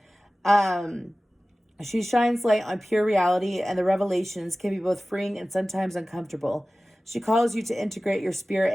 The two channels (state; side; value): normal; both; correlation 0.97